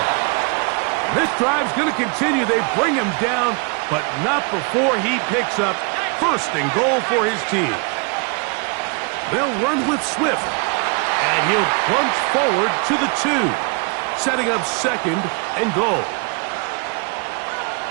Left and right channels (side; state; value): left; quieter; 33.5 dB